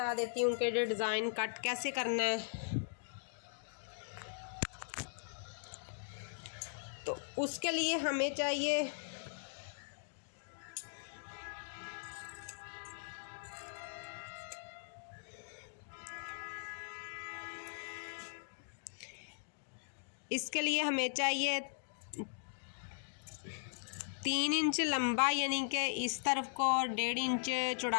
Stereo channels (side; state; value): right; silent; digital silence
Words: देती हूँ कि डिज़ाइन कट कैसे करना है। तो उसके लिए हमें चाहिए इसके लिए हमें चाहिए 3 इंच लंबा, यानी कि इस तरफ को, और 1.5 इंच